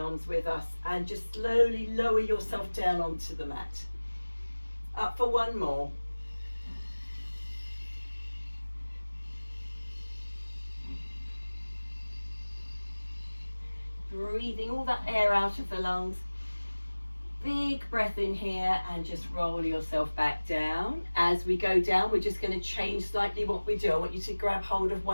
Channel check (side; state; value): both; inverted; correlation -1.00